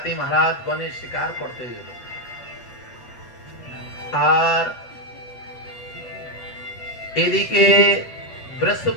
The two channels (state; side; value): late; right; 7.9 ms